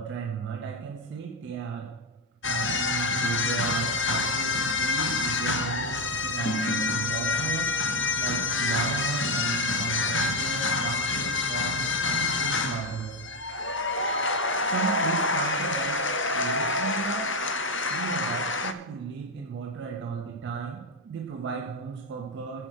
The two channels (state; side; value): normal; both; correlation 0.09